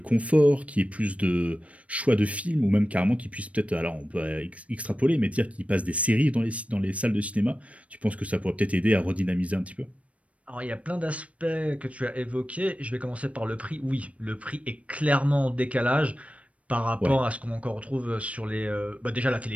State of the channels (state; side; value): late; left; 0.065 ms